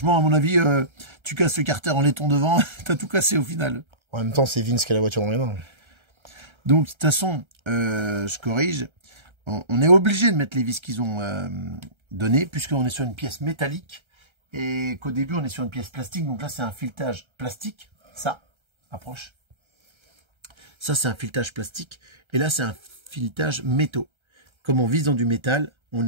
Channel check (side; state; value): left; late; 1.3 ms